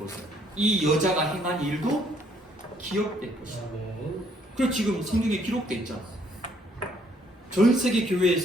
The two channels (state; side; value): normal; both; correlation 0.66